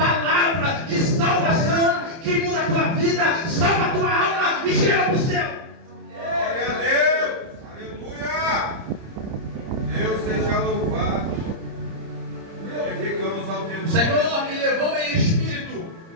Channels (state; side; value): late; left; 30 ms